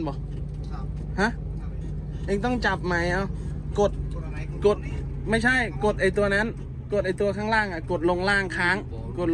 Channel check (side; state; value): both; identical; correlation 1.00